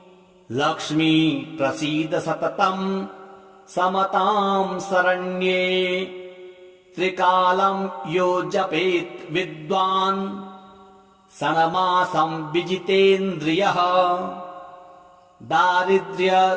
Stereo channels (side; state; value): both; identical; correlation 1.00